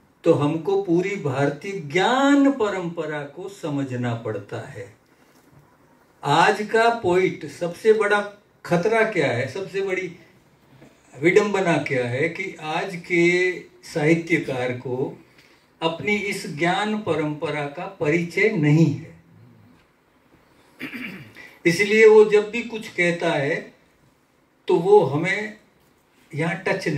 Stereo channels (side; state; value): both; identical; correlation 1.00